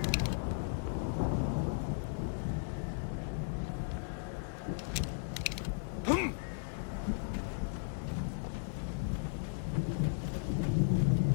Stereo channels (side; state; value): right; silent; 54 dB below the other